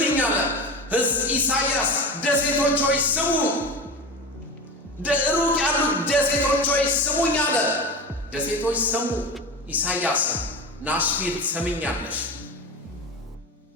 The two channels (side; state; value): both; normal; correlation 0.26